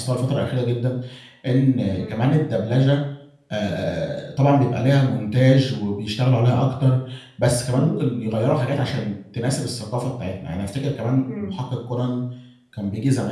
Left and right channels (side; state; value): both; identical; correlation 1.00